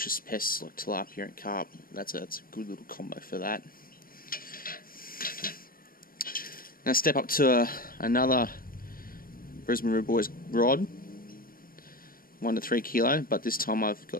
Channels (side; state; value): right; late; 0.42 ms